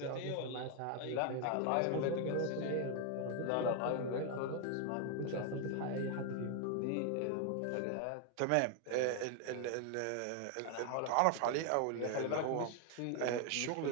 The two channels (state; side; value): different; both; correlation 0.00